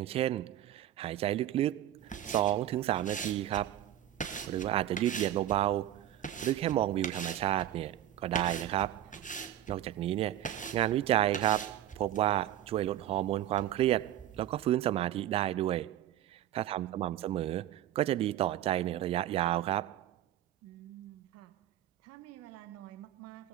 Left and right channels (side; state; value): left; quieter; 12.4 dB